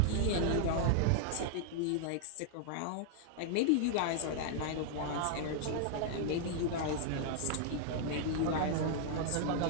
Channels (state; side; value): different; both; correlation -0.01